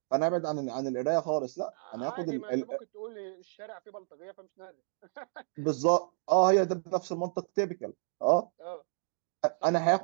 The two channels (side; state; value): left; silent; digital silence